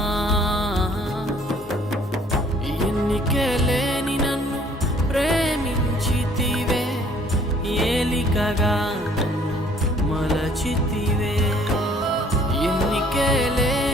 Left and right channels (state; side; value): normal; both; correlation 0.58